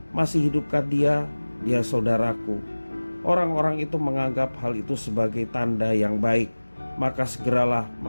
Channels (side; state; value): both; inverted; correlation -1.00